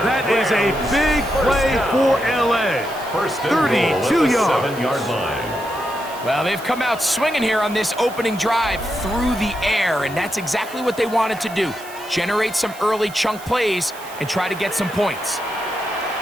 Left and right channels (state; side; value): noise; right; hiss, 18 dB below the sound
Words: That is a big play for L.A. 32 yards. 7-yard line. Well, they've come out swinging here on this opening drive through the air, and that's exactly what they wanted to do. Generate some early chunk plays and try to get some points.